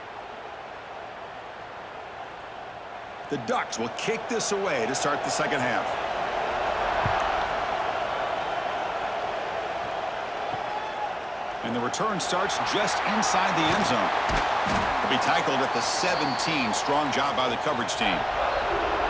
The Ducks will kick this away to start the second half. And the return starts just inside the end zone. He'll be tackled at the 17. Strong job by the coverage team.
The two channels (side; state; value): both; identical; correlation 1.00